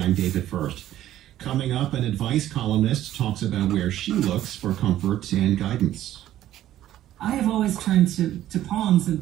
I'm David First. Coming up, an advice columnist talks about where she looks for comfort and guidance. I have always turned to poems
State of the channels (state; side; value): quieter; left; 13.0 dB